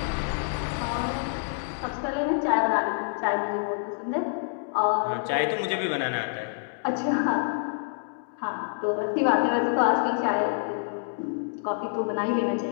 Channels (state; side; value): silent; right; digital silence